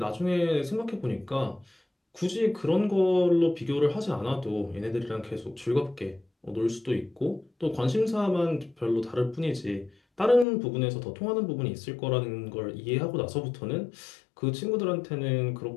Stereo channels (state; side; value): drops out; right; at 10.5 s